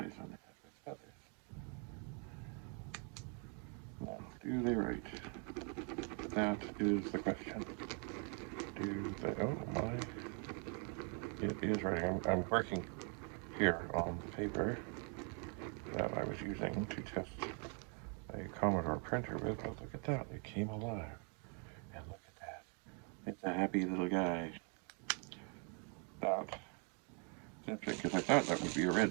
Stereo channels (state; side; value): quieter; left; 38.7 dB